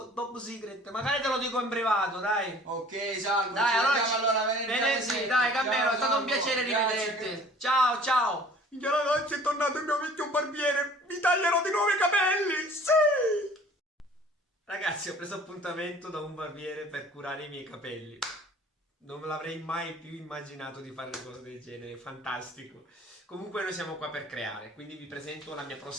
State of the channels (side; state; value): both; normal; correlation 0.50